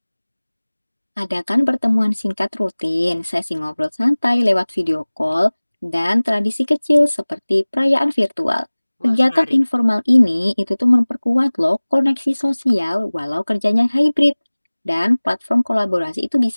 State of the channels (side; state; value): both; inverted; correlation -1.00